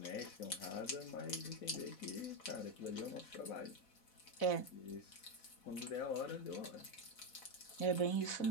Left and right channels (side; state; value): right; late; 4.0 ms